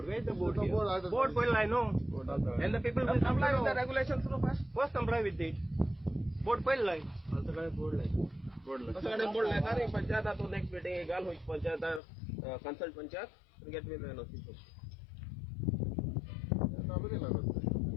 Where is the board? Board will I know. And the people will comply with the regulations first comply with it. Board will line. Board नाही पंचायत तो next meeting गाल होईल panchayat consult panchayat get will notice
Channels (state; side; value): drops out; right; at 12.0 s